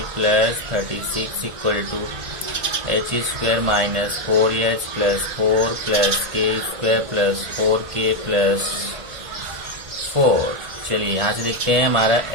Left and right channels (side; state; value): left; late; 1.8 ms